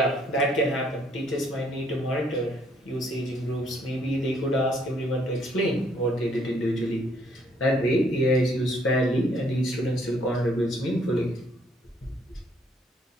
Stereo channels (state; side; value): normal; both; correlation 0.66